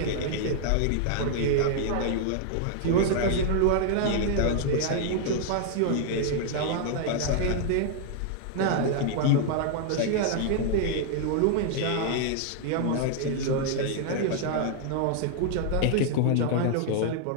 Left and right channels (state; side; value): different; both; correlation 0.00